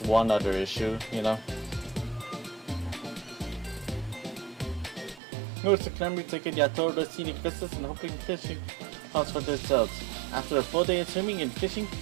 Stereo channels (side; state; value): left; drops out; at 5.2 s